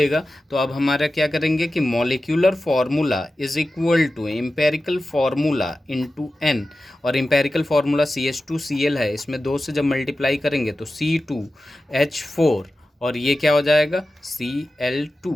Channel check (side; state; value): both; normal; correlation 0.94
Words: तो अब हमारा क्या करेंगे कि molecular formula is equal to empirical formula into n, और एम्पेरिकल फार्मूला CH2Cl है, इसमें 2 से जब मल्टीप्लाई करेंगे तो C2H4, और ये क्या हो जाएगा, Cl2,